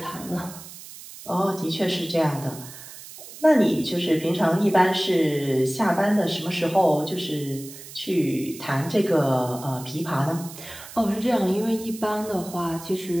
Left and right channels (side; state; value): right; noise; hiss, 15 dB below the sound